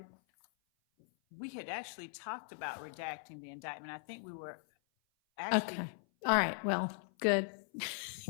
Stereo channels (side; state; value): right; silent; 52 dB below the other